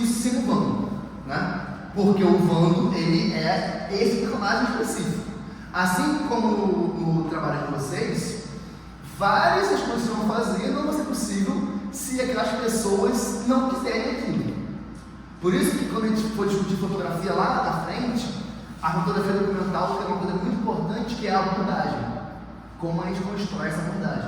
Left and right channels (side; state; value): both; identical; correlation 1.00